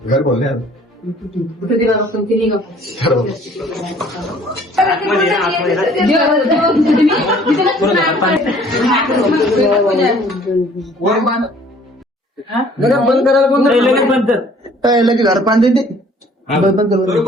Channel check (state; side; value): normal; both; correlation 0.55